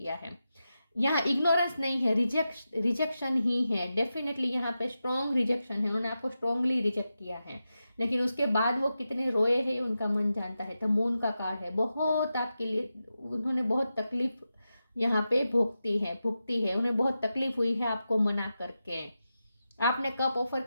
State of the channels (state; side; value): inverted; both; correlation -0.91